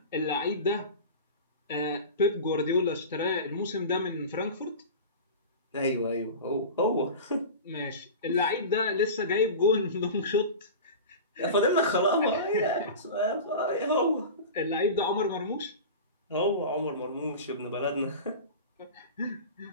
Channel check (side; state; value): both; inverted; correlation -0.31